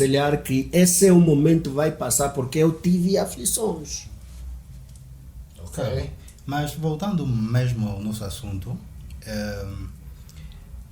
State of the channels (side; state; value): both; identical; correlation 1.00